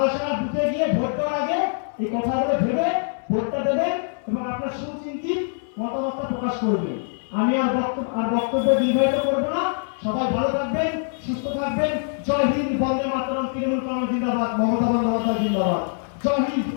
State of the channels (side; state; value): right; silent; 62 dB below the other